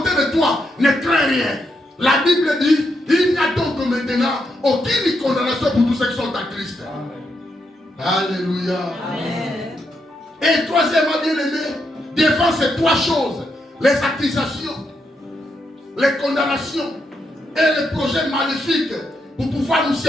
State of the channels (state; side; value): normal; both; correlation 0.81